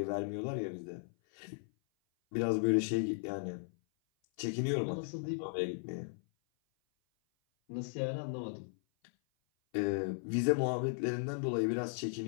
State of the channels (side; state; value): right; silent; 54 dB below the other